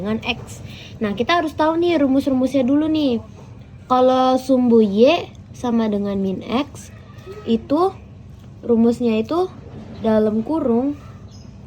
X. Nah, kita harus tahu nih rumus-rumusnya dulu nih. Kalau sumbu Y sama dengan min X, itu rumusnya itu dalam kurung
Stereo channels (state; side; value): identical; both; correlation 1.00